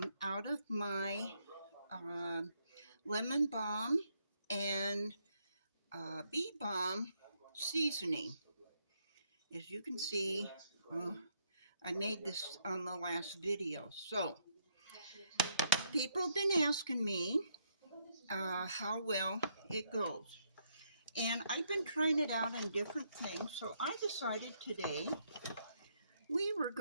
of my lemon balm and bee balm seasoning. As you can see, I made this on the last video. So people have been asking me how well it goes. And I've been trying it out on different things. So I decided today we were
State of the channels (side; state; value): both; inverted; correlation -0.73